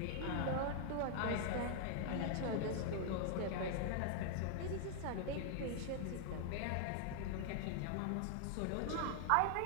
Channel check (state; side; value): different; both; correlation 0.00